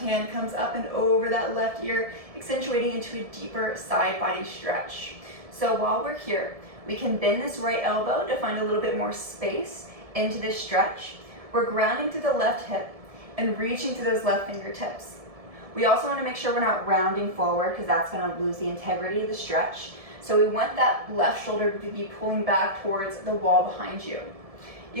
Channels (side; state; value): left; late; 1.7 ms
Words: comes up and over that left ear, accentuating into a deeper side body stretch. So while we're here, we can bend this right elbow to find a little bit more space into this stretch. We're grounding through the left hip and reaching to those left fingertips. We also want to make sure we're not rounding forward because that's going to lose the integrity of the stretch. So we want that left shoulder to be pulling back towards the wall behind you.